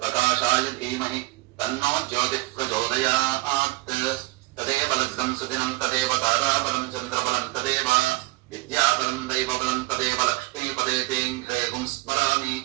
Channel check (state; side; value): quieter; left; 20.8 dB